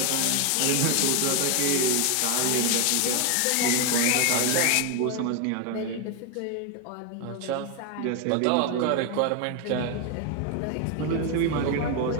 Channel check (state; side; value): different; both; correlation 0.01